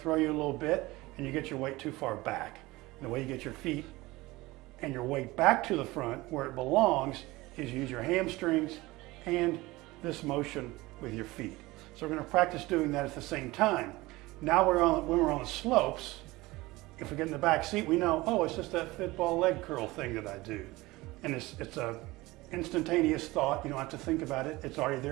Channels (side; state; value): left; quieter; 20.4 dB